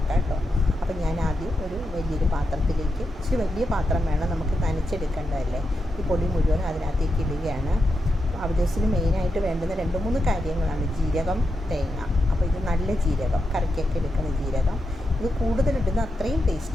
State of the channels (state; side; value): normal; both; correlation 0.86